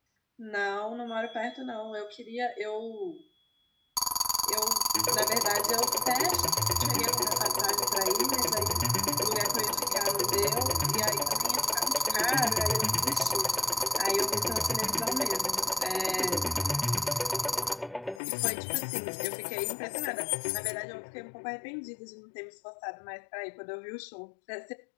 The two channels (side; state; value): right; drops out; at 18.2 s